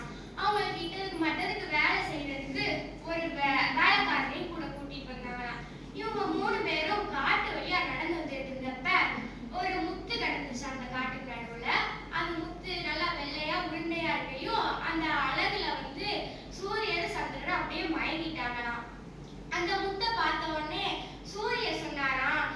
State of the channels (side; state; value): both; identical; correlation 1.00